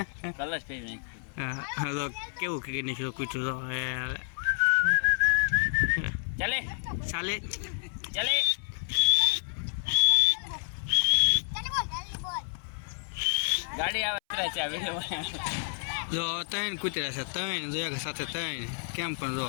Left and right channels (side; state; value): right; silent; 58 dB below the other